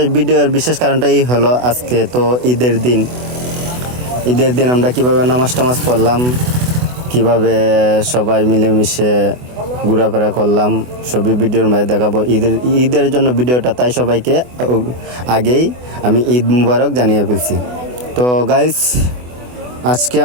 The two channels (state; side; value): late; left; 24 ms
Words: ভিডিওর বিশেষ কারণটাই হলো আজকে তো ঈদের দিন। ঈদের দিন আমরা কিভাবে নামাজ টামাজ পড়লাম, কিভাবে সবাই মিলেমিশে ঘোরাফেরা করলাম, সবই ভিডিওর মাঝে দেখাবো। ঈদের জন্য ভিডিওটা, তাই সবাইকে আগেই আমি ঈদ মুবারক জানিয়ে ফেলছি। তো গাইস, আজকে